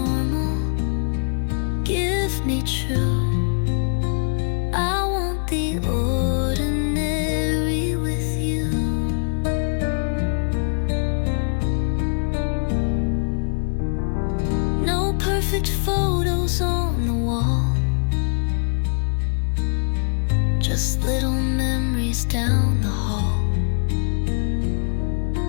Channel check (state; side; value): silent; right; digital silence